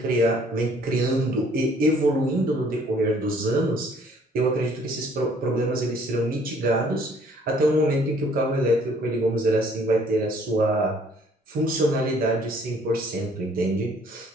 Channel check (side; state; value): both; normal; correlation 0.59